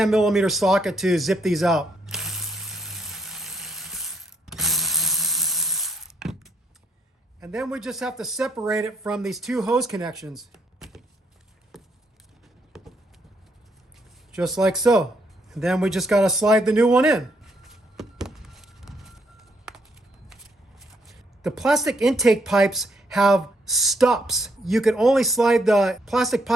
socket to zip these out. And And then we just have to separate it from these two hose connections. Just like so. And then we just got to slide the new one in. The plastic intake pipes have stops. You can only slide the plastic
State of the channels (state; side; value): normal; both; correlation 0.73